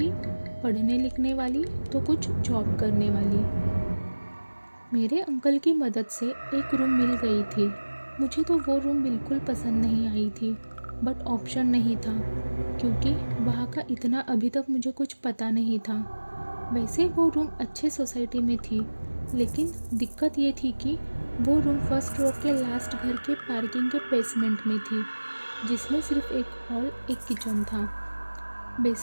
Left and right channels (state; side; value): inverted; both; correlation -1.00